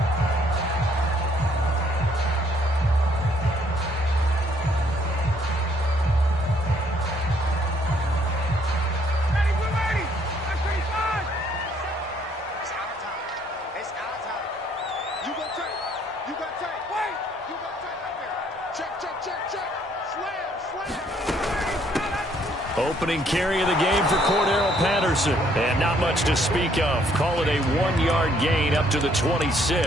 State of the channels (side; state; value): both; normal; correlation 0.66